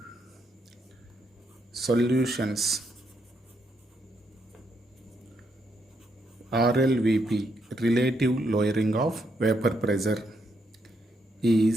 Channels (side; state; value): both; normal; correlation 0.77